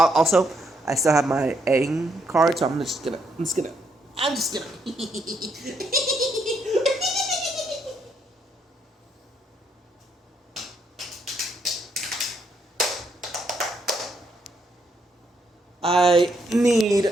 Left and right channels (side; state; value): both; normal; correlation 0.74